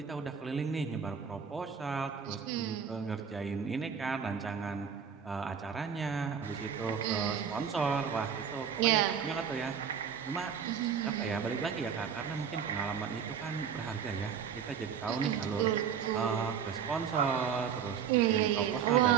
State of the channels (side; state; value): left; quieter; 7.3 dB